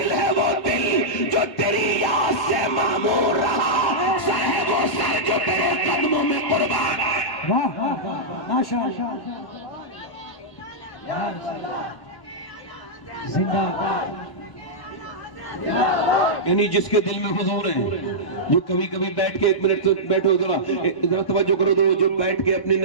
ہے وہ دل جو تیری یاد سے معمور رہا، سر ہے وہ سر جو تیرے قدموں میں قربان۔ واہ واہ واہ ماشاء اللہ زندہ باد۔ یعنی جس کے دل میں حضور ہیں، جو کبھی کبھی بیٹھ کے ایک منٹ تو بیٹھو، ذرا توجہ کرو، جو بیٹھ کے اپنے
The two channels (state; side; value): late; right; 1.0 ms